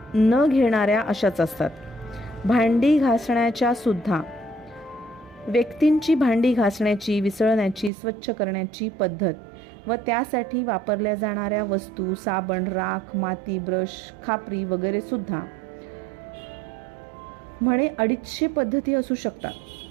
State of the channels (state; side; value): drops out; left; at 7.9 s